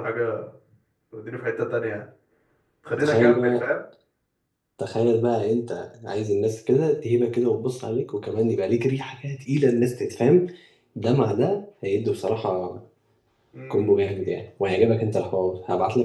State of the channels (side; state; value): both; identical; correlation 1.00